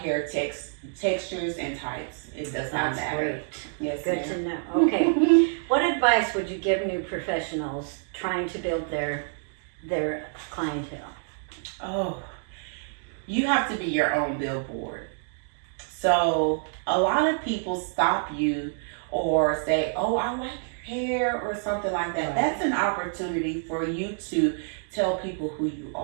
textures and types. It does not matter. Great. Yes, Good ma'am. to know. Okay. What advice would you give new professionals trying to build their clientele? Oh, you have to be your own billboard. So a lot of people stop you or say, "Oh, I like your hair," or something like that. Right. That's an opportunity for you to tell people who you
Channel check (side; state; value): left; silent; digital silence